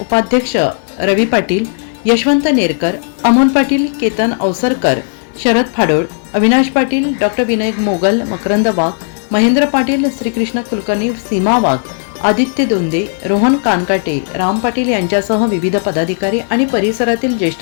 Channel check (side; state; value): right; silent; digital silence